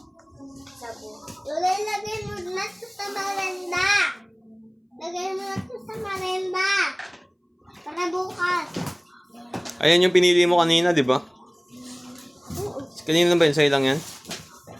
Lola, lagay mo na sa merenda. Lagay mo na sa merenda. Para bukas. Ayan yung pinili mo kanina, di ba? Kanina ba yun? Sa'yo lang yan?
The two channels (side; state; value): both; identical; correlation 1.00